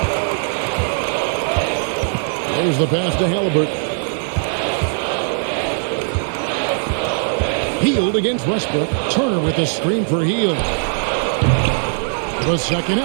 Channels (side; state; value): left; silent; digital silence